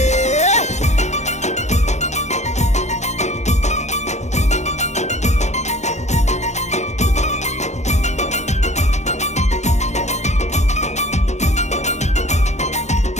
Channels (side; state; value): right; late; 0.33 ms